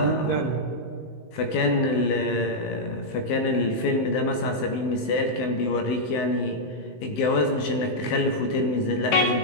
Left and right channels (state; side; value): late; right; 19 ms